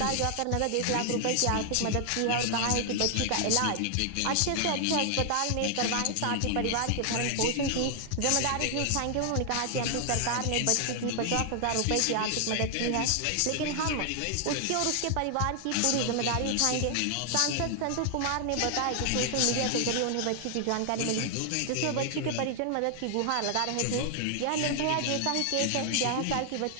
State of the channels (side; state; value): both; different; correlation 0.00